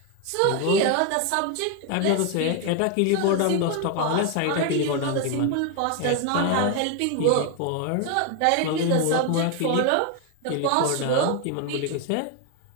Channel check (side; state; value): both; different; correlation 0.01